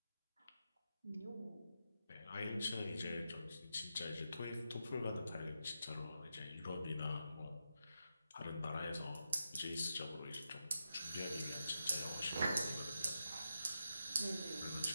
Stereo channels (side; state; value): both; inverted; correlation -0.86